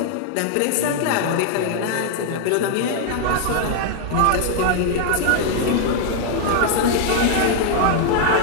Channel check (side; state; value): both; different; correlation -0.01